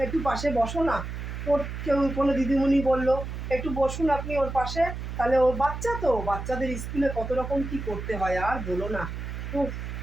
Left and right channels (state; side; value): noise; right; hum, 7 dB below the sound